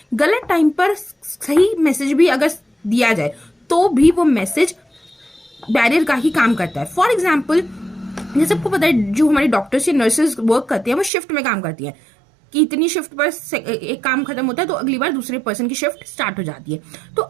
गलत टाइम पर सही मैसेज भी अगर दिया जाए तो भी वो मैसेज बैरियर का ही काम करता है। फॉर एग्जाम्पल, जैसे आपको पता है जो हमारे डॉक्टर्स या नर्सेज वर्क करते हैं वो शिफ्ट में काम करती है कि इतनी शिफ्ट पर एक काम खत्म होता है तो अगली बार दूसरे पर्सन की शिफ्ट स्टार्ट हो जाती है। तो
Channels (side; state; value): left; drops out; at 11.1 s